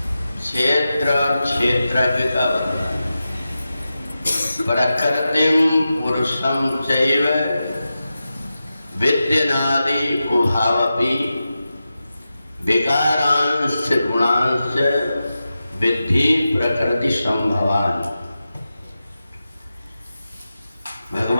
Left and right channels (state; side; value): inverted; both; correlation -0.92